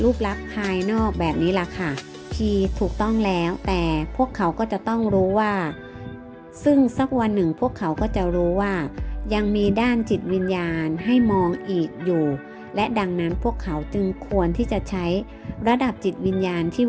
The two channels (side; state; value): both; identical; correlation 1.00